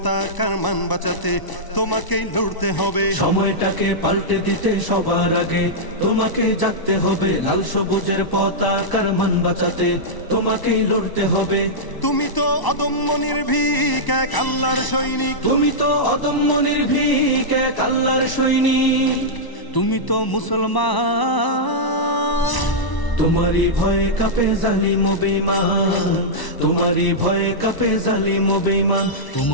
মান বাঁচাতে তোমাকেই লড়তে হবে। সময়টাকে পাল্টে দিতে সবার আগে তোমাকেই জাগতে হবে। লাল সবুজের পতাকার মান বাঁচাতে তোমাকেই লড়তে হবে। তুমি তো অদম্য নির্ভীক এক আল্লাহর সৈনিক। তুমি তো অদম্য নির্ভীক এক আল্লাহর সৈনিক। তুমি তো মুসলমান। তোমারই ভয়ে কাঁপে জালিম ও বেঈমান। তোমারই ভয়ে কাঁপে জালিম ও বেঈমান।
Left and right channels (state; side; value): late; right; 1.0 ms